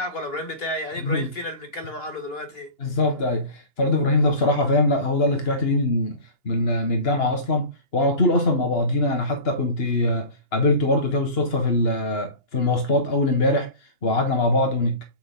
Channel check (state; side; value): late; right; 2.8 ms